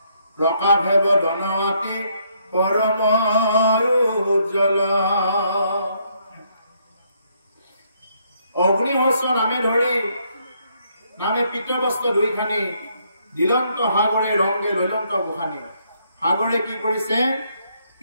প্ৰকাশে বদনাতি পৰম উজ্জ্বল অগ্নিহস্ত নামে ধৰি নামে পিতবস্ত্ৰ দুইখানি দিলন্ত সাগৰে ৰংগে লৈলন্ত গোখানি সাগৰে কি কৰিছে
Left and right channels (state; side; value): inverted; both; correlation -0.72